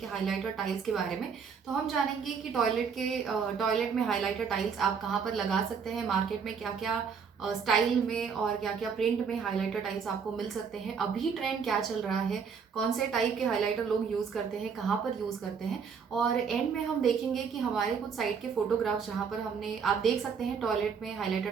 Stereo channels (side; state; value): left; quieter; 6.3 dB